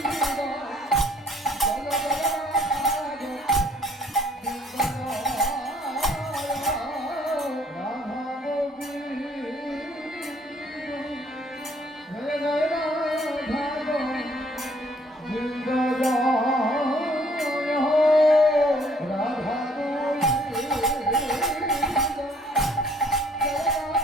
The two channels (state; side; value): normal; both; correlation 0.62